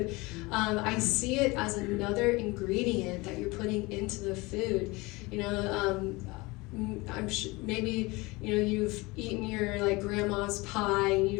I see it as another ingredient that you're putting into the food. You know, I'm sure maybe, you know, you've eaten your like grandma's pie and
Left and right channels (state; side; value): quieter; right; 23.6 dB